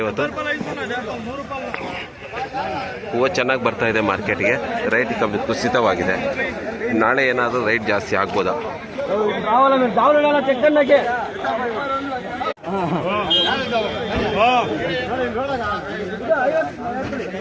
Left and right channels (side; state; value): both; identical; correlation 1.00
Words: ಇವತ್ತು. ಹೂವು ಚೆನ್ನಾಗಿ ಬರ್ತಾ ಇದೆ ಮಾರ್ಕೆಟ್ಗೆ, ರೈಟ್ ಕಮ್ಮಿ ಕುಸಿತವಾಗಿದೆ. ನಾಳೆ ಏನಾದರೂ ರೈಟ್ ಜಾಸ್ತಿ ಆಗ್ಬೋದಾ?